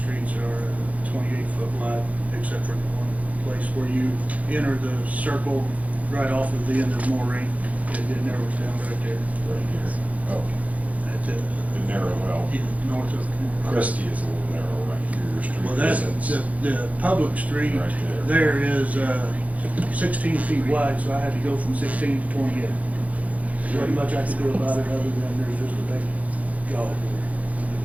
are 28-foot wide, except for the one place where you enter the circle right off of the end of Moraine, it narrows down right there. Right here. Oh, That's it. the narrow, well, Yeah, north of. Christie is a little narrow right here. Your street Well, that's, isn't. the public street Right there is 16 feet wide, so I had to go from 16 to 28. There's not much I could do about it other than there's just a big gully there.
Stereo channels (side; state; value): left; late; 0.070 ms